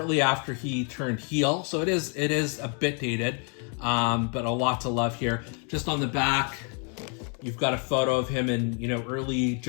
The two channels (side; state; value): right; quieter; 40.0 dB